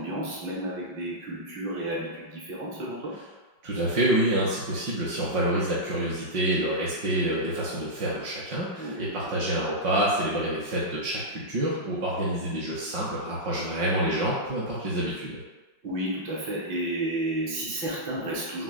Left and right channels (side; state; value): left; late; 5.3 ms